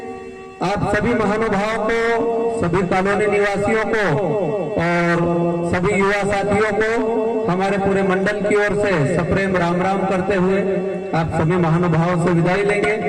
आप सभी महानुभावों को, सभी कॉलोनी निवासियों को और सभी युवा साथियों को हमारे पूरे मंडल की ओर से सप्रेम राम राम करते हुए आप सभी महानुभावों से विदाई लेंगे।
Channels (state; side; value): identical; both; correlation 1.00